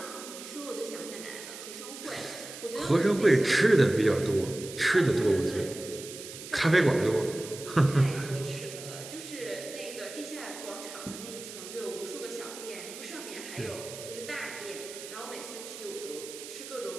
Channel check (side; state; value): right; noise; hiss, 12 dB below the sound